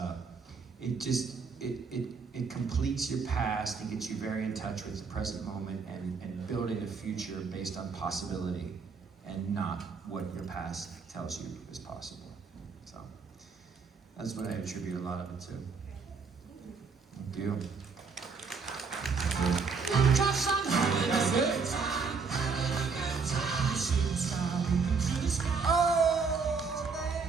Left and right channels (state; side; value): quieter; left; 5.0 dB